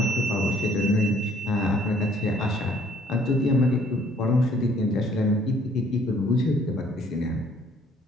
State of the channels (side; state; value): both; normal; correlation 0.61